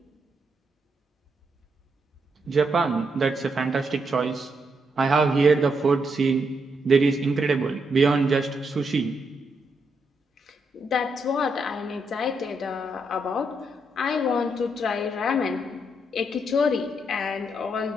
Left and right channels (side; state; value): both; normal; correlation 0.80